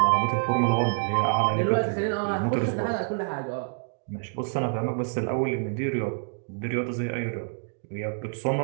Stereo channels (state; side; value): silent; left; 60 dB below the other